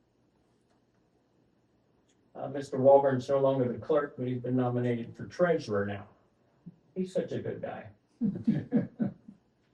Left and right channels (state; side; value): identical; both; correlation 1.00